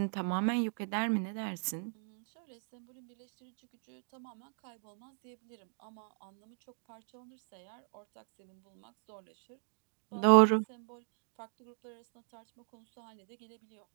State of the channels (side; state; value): left; silent; 53 dB below the other